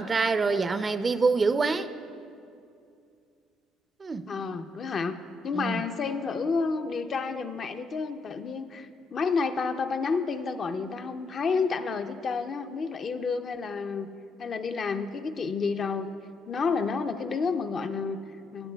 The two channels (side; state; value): both; normal; correlation 0.78